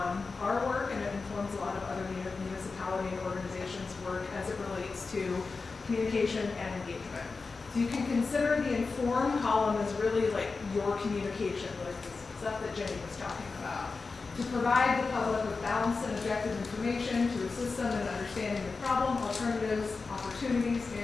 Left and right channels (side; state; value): right; quieter; 4.2 dB